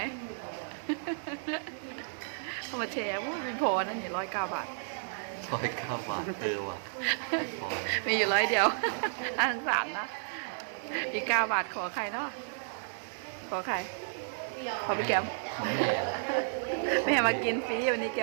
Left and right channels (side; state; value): left; silent; 56 dB below the other